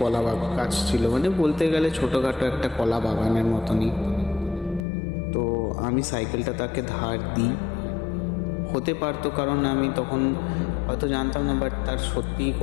গাছ ছিল, মানে বলতে গেলে ছোটোখাটো একটা কলা বাগানের মতনই। তো আমি সাইকেলটা তাকে ধার দিই। হতে পারতো, কারণ আমি তখন হয়তো জানতাম না, বাট তার সত্যিই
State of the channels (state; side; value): drops out; right; at 4.9 s